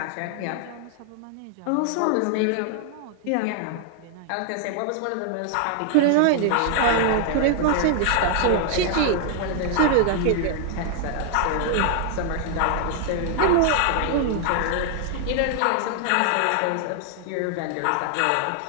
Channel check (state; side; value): different; both; correlation 0.00